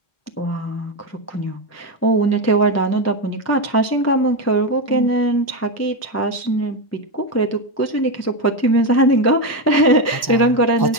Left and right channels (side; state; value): right; late; 1.1 ms